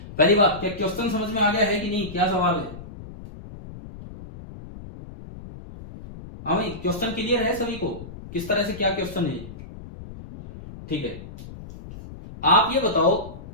पहली बात, क्या क्वेश्चन समझ में आ गया है कि नहीं, क्या सवाल है? हाँ भाई, क्वेश्चन क्लियर है सभी को, किस तरह से क्या क्वेश्चन है? ठीक है, आप ये बताओ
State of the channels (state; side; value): noise; left; rumble, 14 dB below the sound